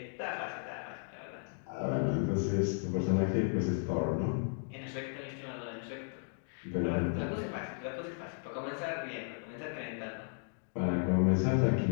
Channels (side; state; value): right; silent; 55 dB below the other